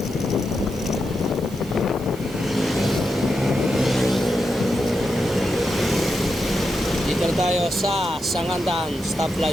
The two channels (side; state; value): right; noise; hiss, 19 dB below the sound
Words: Dito tayo sa Sangandan